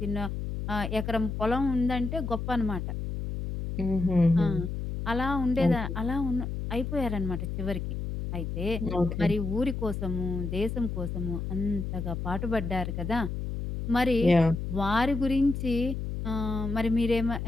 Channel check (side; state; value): left; noise; hum, 4 dB below the sound